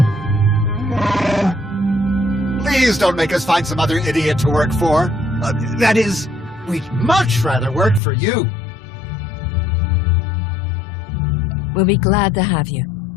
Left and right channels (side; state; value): right; drops out; at 8.0 s